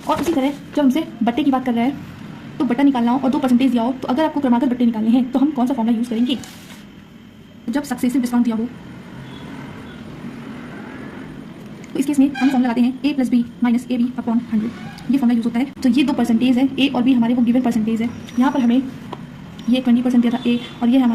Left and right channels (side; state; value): both; identical; correlation 1.00